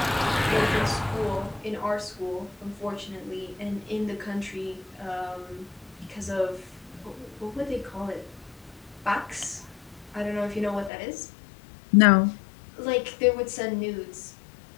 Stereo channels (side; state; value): right; drops out; at 10.9 s